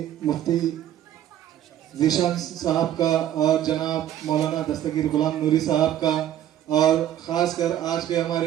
مفتی ذیشان صاحب کا اور جناب مولانا دستگیر غلام نوری صاحب کا، اور خاص کر آج کے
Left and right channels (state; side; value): quieter; left; 11.5 dB